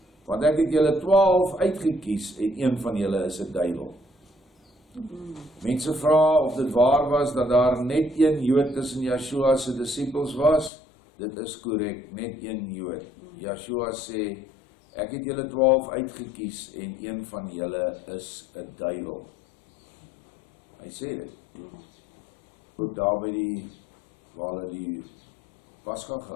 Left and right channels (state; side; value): drops out; right; at 10.7 s